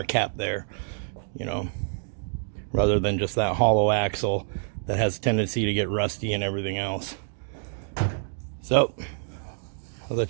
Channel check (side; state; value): left; silent; 56 dB below the other